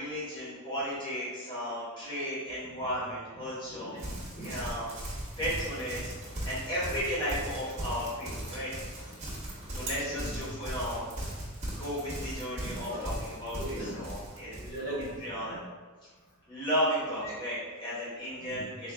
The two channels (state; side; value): normal; both; correlation 0.10